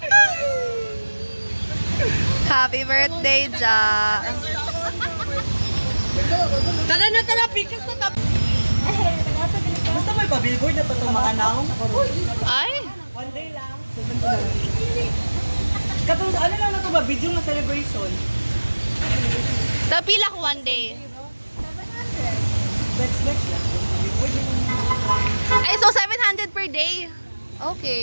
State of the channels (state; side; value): inverted; both; correlation -1.00